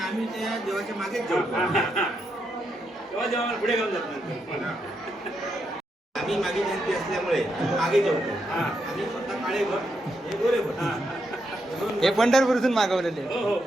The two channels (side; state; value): both; normal; correlation 0.81